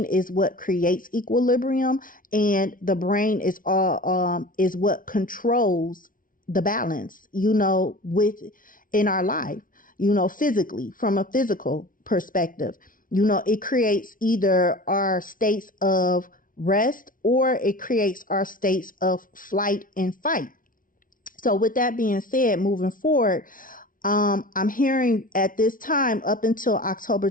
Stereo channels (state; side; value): late; right; 0.39 ms